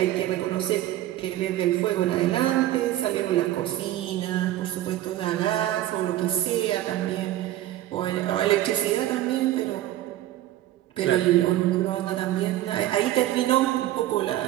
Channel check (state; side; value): quieter; left; 14.1 dB